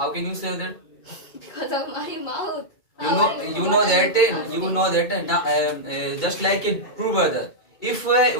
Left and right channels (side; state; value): right; late; 2.3 ms